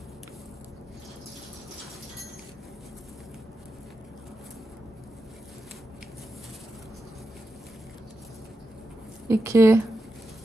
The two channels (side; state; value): both; normal; correlation 0.89